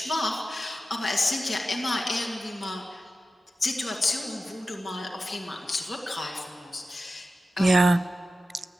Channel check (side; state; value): both; normal; correlation 0.93